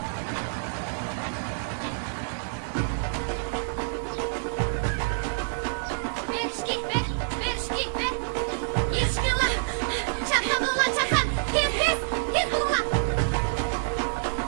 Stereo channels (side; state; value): left; silent; digital silence